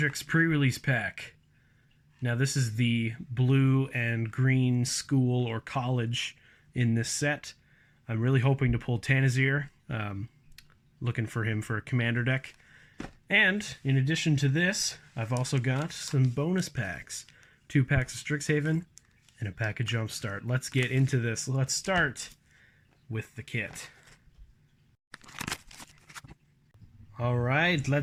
pre-release pack. Now this is the blue and green school or college in this set. I'm really hoping to pull Tanazir. Looking for him for a commander deck. And in addition to this, I've also got some bonus packs. 2 packs of Strixhaven and a pack of Jumpstart. Let's get into this. Let's start with the kit. Alright,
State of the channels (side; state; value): both; identical; correlation 1.00